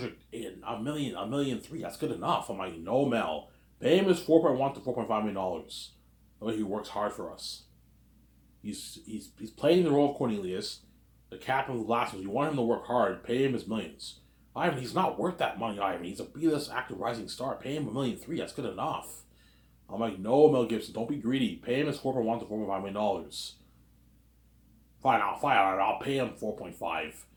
a million 3. That's good enough. I'm like, no, Mel. Pay him his 4.1 to $4.5 million. The way he works hard for us. He's playing the role of Cornelius, the captain of the last ones. You want him to work hard. Pay him his millions. Ivan, he's not worth that money, Ivan. He's a B-list actor, rising star. Pay him $1.3 million. That's good enough. I'm like, no, Mel Gibson, don't be greedy. Pay him his 4.1 to $4.5 million. Fine, I'll pay him 4.5.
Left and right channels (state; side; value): identical; both; correlation 1.00